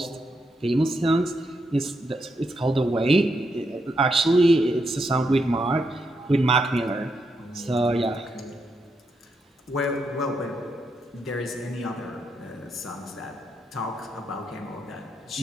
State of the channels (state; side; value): normal; both; correlation 0.81